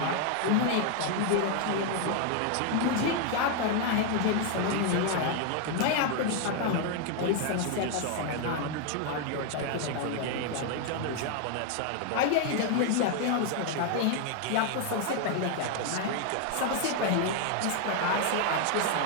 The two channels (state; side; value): different; both; correlation 0.00